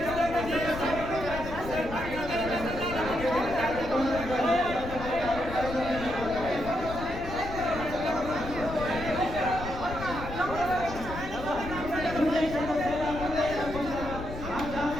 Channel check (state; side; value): noise; left; rumble, 9 dB below the sound